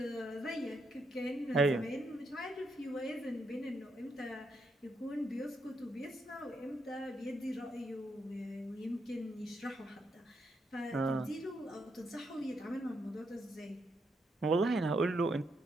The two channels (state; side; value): normal; both; correlation 0.79